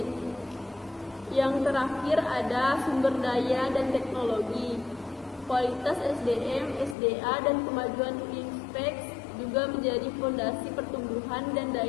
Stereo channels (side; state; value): right; drops out; at 7.0 s